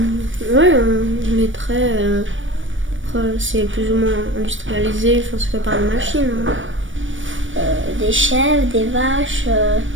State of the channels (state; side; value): late; left; 0.56 ms